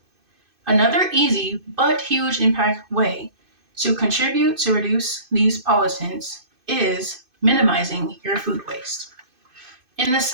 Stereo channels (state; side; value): late; left; 2.5 ms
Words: Another easy but huge impact way to contribute to reduce these pollutants is minimizing your food waste. In the